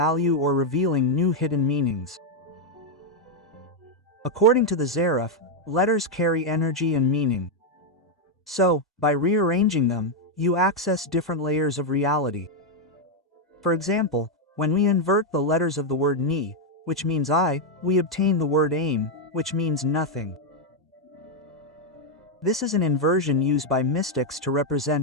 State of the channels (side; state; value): both; normal; correlation 0.01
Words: or revealing new hidden meanings. According to the Zarif, letters carry energy and meaning. So, by rearranging them, you access different layers of reality. For example, when we invert the letters of the word ni, which means I, we obtain the word aim, which means nothing. This is an inversion used by mystics to